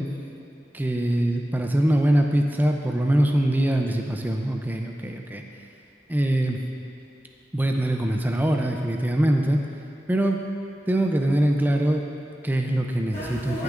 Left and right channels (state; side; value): normal; both; correlation 0.94